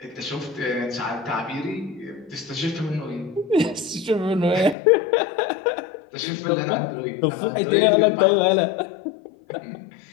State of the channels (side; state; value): right; drops out; at 4.8 s